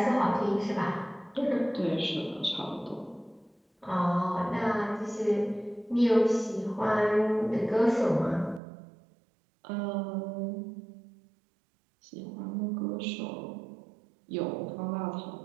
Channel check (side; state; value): left; drops out; at 8.6 s